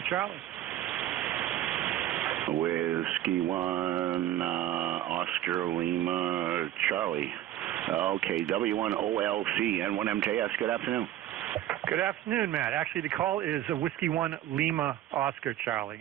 Charlie. Whiskey 1, Oscar Lima Charlie. Okay, W1OLC, N1MJS. Good afternoon. Good afternoon, Matt. Actually, the call is Whiskey 1 Lima Oscar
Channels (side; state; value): left; quieter; 12.7 dB